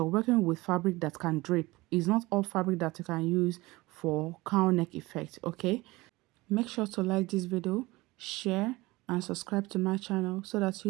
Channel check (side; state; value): left; quieter; 21.0 dB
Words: working with fabric that can drape. It's not all fabric that you can use for cowl neck effect. Okay, make sure to like this video, share and subscribe to my channel so that